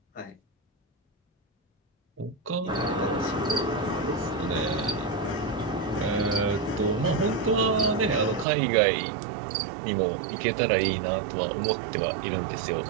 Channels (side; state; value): left; drops out; at 8.5 s